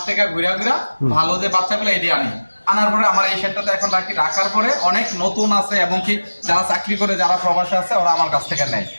থেকে ঘুরা ভালো যে বাচ্চাগুলো এটি আনার পরে আমার এই সেটটাতে এখন রাখার পরে অনেক নতুন আছে এবং কি যারা চাকরি করে যারা প্রবাসে আছে ওরা আমার কাছ থেকে নেয়।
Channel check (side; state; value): both; inverted; correlation -1.00